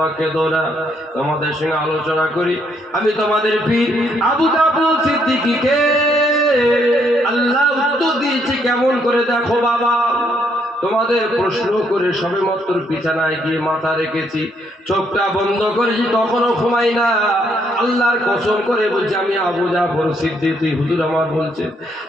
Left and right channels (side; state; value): both; normal; correlation 0.72